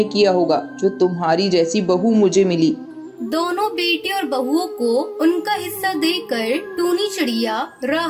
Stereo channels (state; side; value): identical; both; correlation 1.00